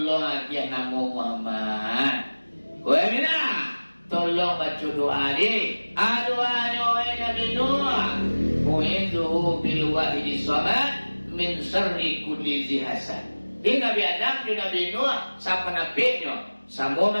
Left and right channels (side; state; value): both; inverted; correlation -1.00